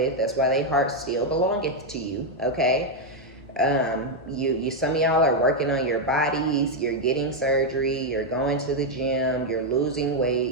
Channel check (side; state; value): both; normal; correlation 0.01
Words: That's why they heart still belongeth to you, okay? You some of y'all are working on your bodies, you're getting surgery, you're going to the gym, you're losing